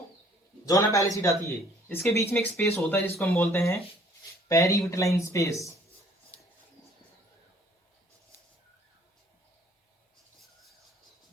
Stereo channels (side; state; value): both; normal; correlation 0.58